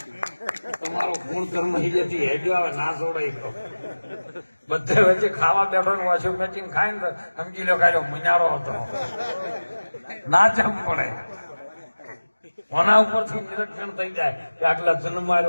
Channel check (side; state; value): both; inverted; correlation -1.00